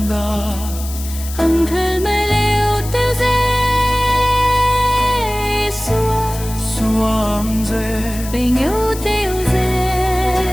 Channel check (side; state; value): left; noise; hiss, 12 dB below the sound